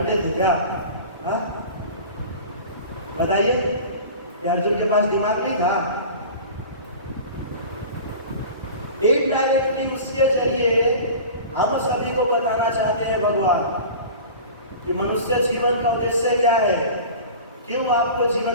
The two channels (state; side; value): inverted; both; correlation -0.37